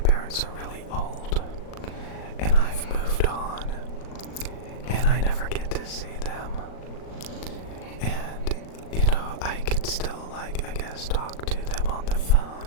are really old and I've moved on and I never get to see them. And, I could still, I guess, talk to them on the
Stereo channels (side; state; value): right; late; 38 ms